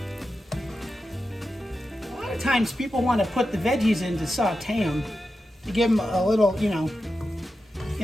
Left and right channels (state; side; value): normal; both; correlation 0.90